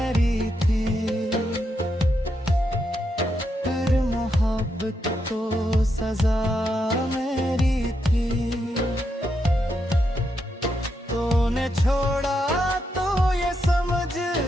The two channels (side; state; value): both; normal; correlation 0.82